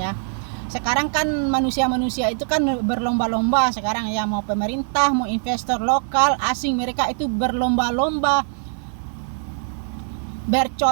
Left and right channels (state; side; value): silent; left; 64 dB below the other